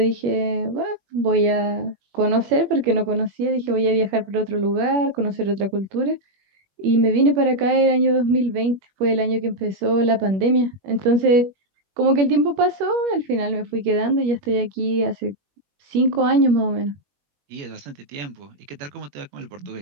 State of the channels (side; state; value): left; late; 21 ms